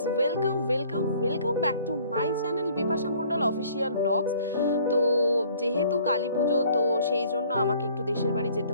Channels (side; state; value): both; inverted; correlation -0.56